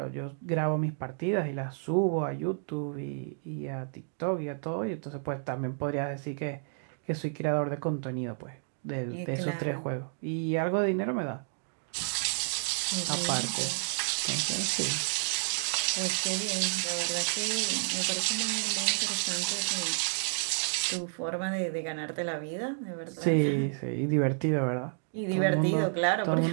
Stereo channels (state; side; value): silent; left; digital silence